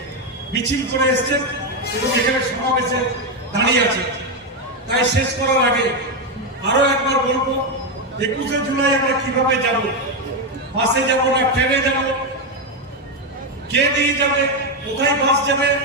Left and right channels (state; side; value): normal; both; correlation 0.07